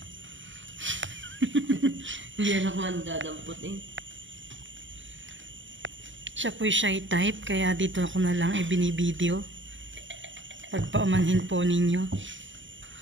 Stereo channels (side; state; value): left; late; 0.55 ms